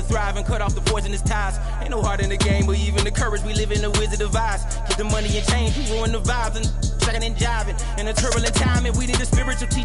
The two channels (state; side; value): identical; both; correlation 1.00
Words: thrive and cut off the poisonous ties. Ain't no heart in the game, but even the courage we live in the Wizard of Oz. Keep the money and change, you ruin the vibes and shucking and jiving. In a turbulent time, and we need a spiritual